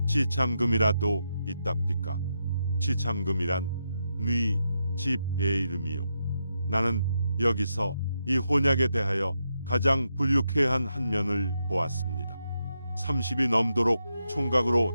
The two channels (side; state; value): both; inverted; correlation -0.84